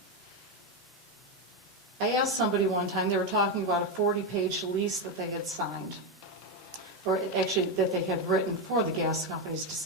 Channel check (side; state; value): both; normal; correlation 0.09